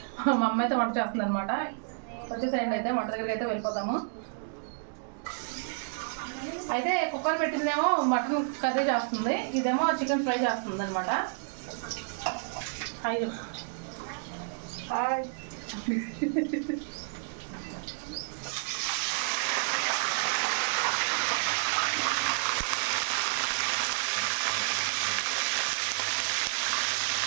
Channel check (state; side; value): silent; left; digital silence